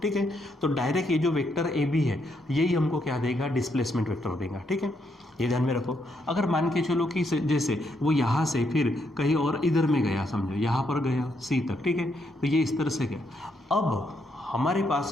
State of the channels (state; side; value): normal; both; correlation 0.77